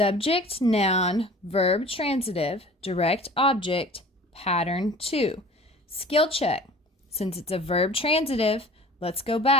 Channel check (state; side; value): normal; both; correlation 0.44